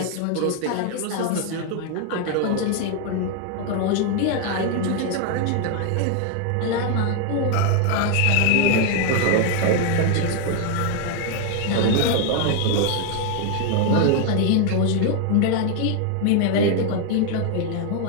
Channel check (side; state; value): both; different; correlation 0.01